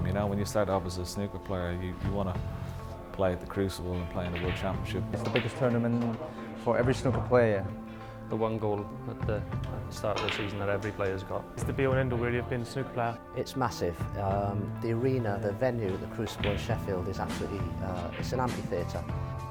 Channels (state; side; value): identical; both; correlation 1.00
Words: you know, when you start off as a snooker player, you want to play at the Crucible and play in the World Championship. It's the biggest tournament for every snooker player. The one goal at the start of the season that every player's got. It's the be-all and end-all really of being a snooker player. It's massive. The arena, the venue at the Crucible in Sheffield is absolutely, it's an amphitheatre.